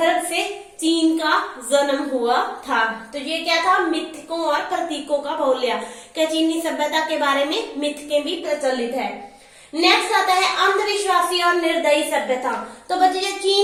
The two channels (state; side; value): identical; both; correlation 1.00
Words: से चीन का जन्म हुआ था। तो ये क्या था? मिथकों और प्रतीकों का बहुल्य। क्या चीनी सभ्यता के बारे में मिथकें भी प्रचलित है। नेक्स्ट आता है अंधविश्वासी और निर्दयी सभ्यता। तो बच्चे, जो